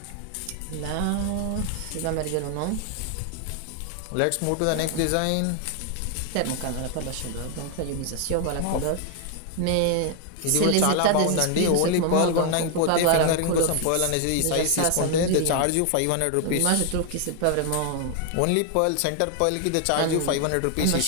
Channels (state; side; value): different; both; correlation 0.00